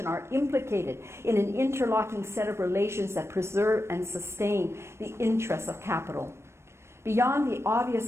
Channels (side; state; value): left; late; 0.13 ms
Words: are implicated in an interlocking set of relations that preserve and sustain the interests of capital. Beyond the obvious